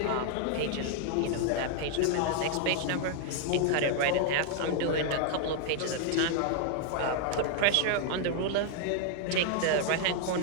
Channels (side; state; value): both; different; correlation 0.00